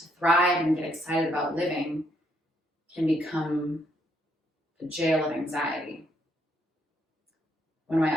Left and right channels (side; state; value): both; normal; correlation 0.73